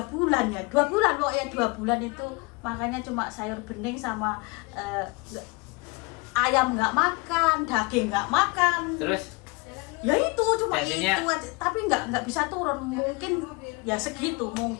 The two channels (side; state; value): right; quieter; 27.7 dB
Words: ya, 2 bulan pokoknya 2 bulan itu makanya cuma sayur bening sama ayam nggak makan, daging nggak makan. Terus? Ya itu cuma tensinya... itu aja, tapi nggak bisa turun, mungkin ya segitu